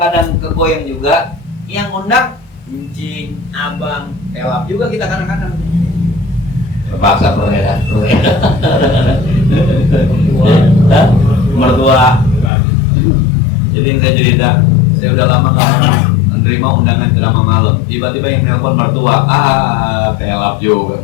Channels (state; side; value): drops out; right; at 12.5 s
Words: kegoyang juga. Yang undang Encing, Abang, Pelap juga kita kadang-kadang terpaksa mertua. Jadi yang saya cerita, saya udah lama menerima undangan ceramah malam. Tiba-tiba yang nelpon mertua, Pelap juga